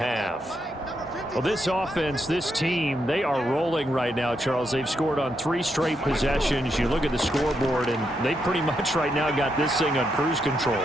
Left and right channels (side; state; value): both; normal; correlation 0.81